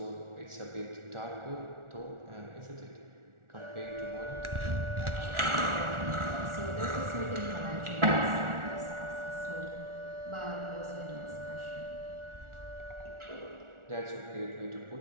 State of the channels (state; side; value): late; left; 1.4 ms